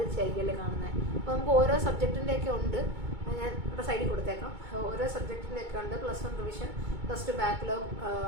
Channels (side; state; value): left; late; 2.2 ms